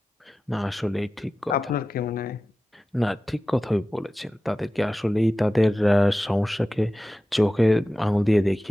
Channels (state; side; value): normal; both; correlation 0.95